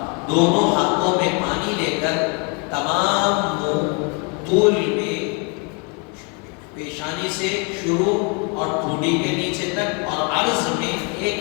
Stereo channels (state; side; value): quieter; right; 33.0 dB